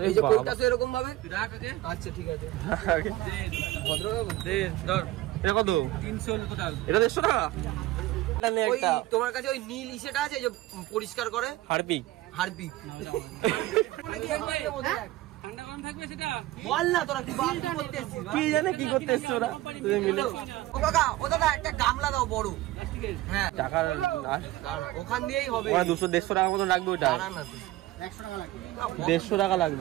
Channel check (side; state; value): left; quieter; 16.9 dB